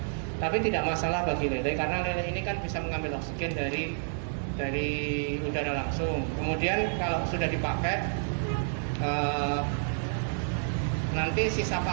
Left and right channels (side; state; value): left; silent; digital silence